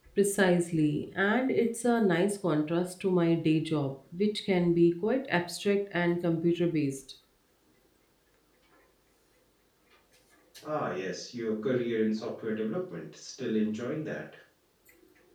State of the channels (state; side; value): identical; both; correlation 1.00